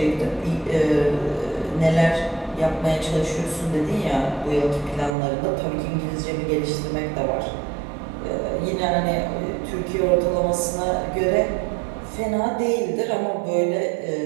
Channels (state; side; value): drops out; left; at 5.2 s